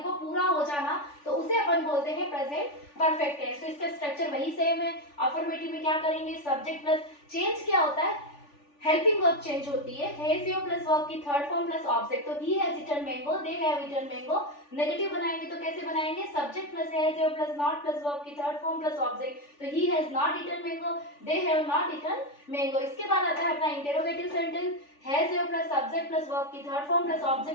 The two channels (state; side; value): late; right; 3.4 ms